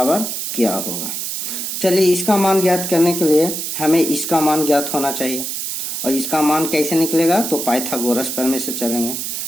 क्या होगा। चलिए इसका मान ज्ञात करने के लिए हमें इसका मान ज्ञात होना चाहिए, और इसका मान कैसे निकलेगा, तो पाइथागोरस प्रमेय से चलेंगे।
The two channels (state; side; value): noise; right; hiss, 4 dB below the sound